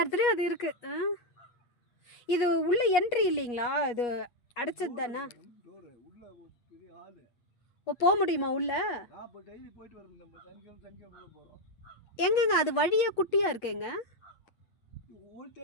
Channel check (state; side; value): late; right; 8.3 ms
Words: இடத்துலையும் அது இருக்குது. இது உள்ள என்ட்ரி இல்லைங்களா? இது அடைச்சது தானே? டோரு உள்ள ஒரு பெரிய ஹாலு. ஓ, போக முடியுமா உள்ள? நான் இப்போ டெய்லி போயிட்டு வரோம். நம்ம சனிக்கிழமை போகிறோம். எங்கங்க அது வழியே குட்டியாக இருக்குங்க? ஓல்